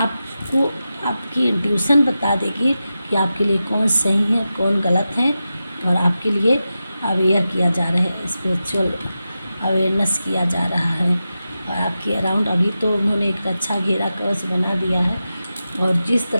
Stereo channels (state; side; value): inverted; both; correlation -0.92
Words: आपकी इंट्यूशन बता देगी कि आपके लिए कौन सही है कौन गलत है। और आपके लिए अवेयर किया जा रहा है, स्पिरिचुअल अवेयरनेस किया जा रहा है। और आपके अराउंड अभी तो उन्होंने एक अच्छा घेरा कवच बना दिया है, और जिस